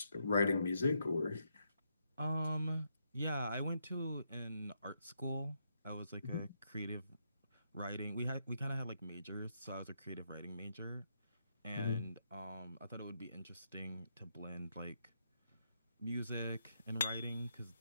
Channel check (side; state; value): both; inverted; correlation -0.78